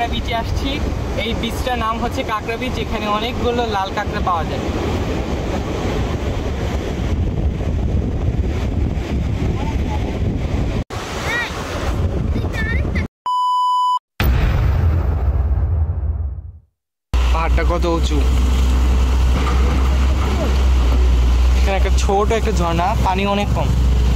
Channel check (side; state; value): both; identical; correlation 1.00